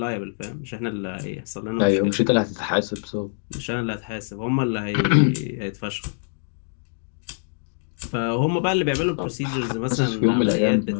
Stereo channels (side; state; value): right; silent; digital silence